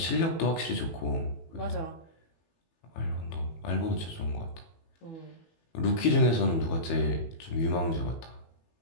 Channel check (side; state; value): right; late; 18 ms